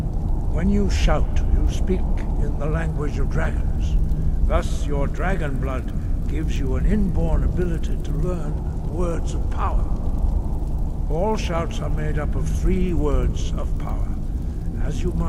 When you shout, you speak in the language of dragons. Thus, your dragon blood gives you an inborn ability to learn words of power. All shouts are made up of 3 words of power. As you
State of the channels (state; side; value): identical; both; correlation 1.00